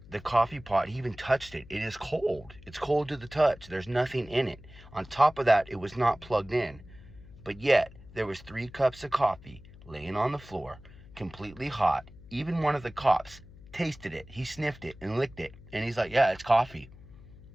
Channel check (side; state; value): left; noise; hum, 20 dB below the sound